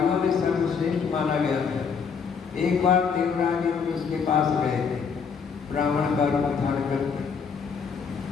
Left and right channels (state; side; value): quieter; right; 6.1 dB